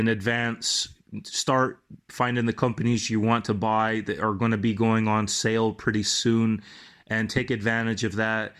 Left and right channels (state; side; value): identical; both; correlation 1.00